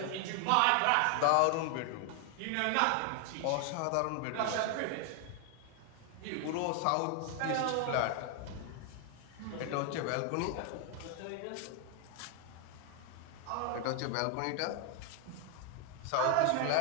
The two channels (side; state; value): both; different; correlation 0.00